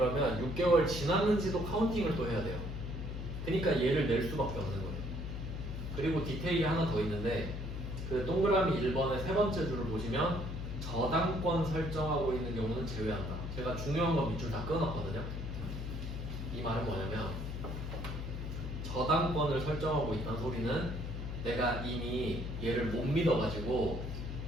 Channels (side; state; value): left; noise; hum, 5 dB below the sound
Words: 6개월 지났는지도 카운팅을 또 해야 돼요. 그러니까 얘를 낼 수밖에 없는 거예요. 그리고 디테일이 하나 더 있는데 그 동그라미 1번의 세 번째 줄을 보시면 저당권 설정하고 있는 경우는 제외한다. 제가 중요한 건 밑줄 다 끊었거든요. 이 말은 뭐냐면 저당권을 설정하고 있다는 소리는 내가 이미 얘를 못 믿어가지고